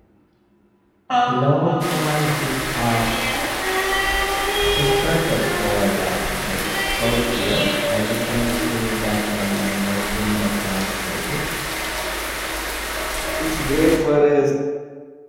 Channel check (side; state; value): both; identical; correlation 1.00